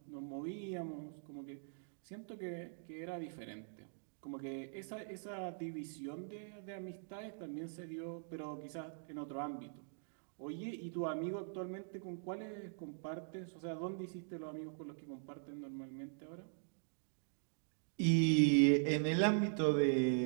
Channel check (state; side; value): silent; left; digital silence